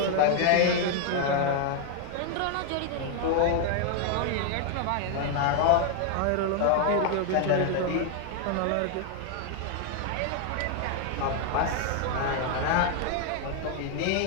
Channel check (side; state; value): both; different; correlation 0.00